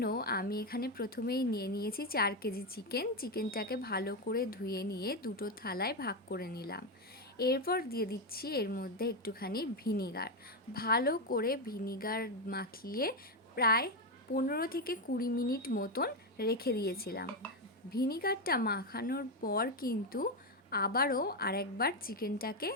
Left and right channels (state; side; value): normal; both; correlation 0.08